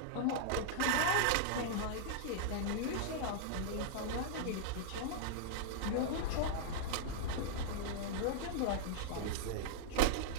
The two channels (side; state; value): both; different; correlation -0.01